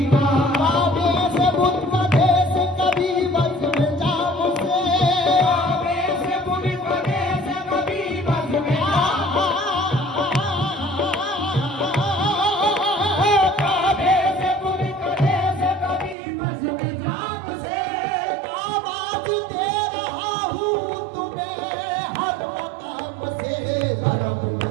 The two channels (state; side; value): drops out; left; at 16.2 s